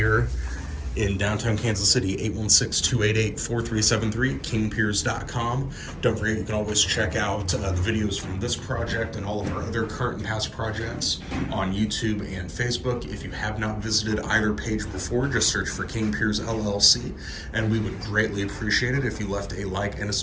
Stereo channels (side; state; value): both; identical; correlation 1.00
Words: in downtown Kansas City. 816-288-4373, kingpiers.com. Don't forget, you can always check out the videos from this project and all of our other current and past projects on YouTube and Facebook. If you have not visited either page before, just search for King Piers LLC, and we would greatly appreciate it if you left a like and a